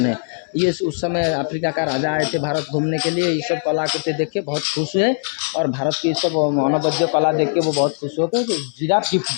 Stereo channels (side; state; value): right; silent; 64 dB below the other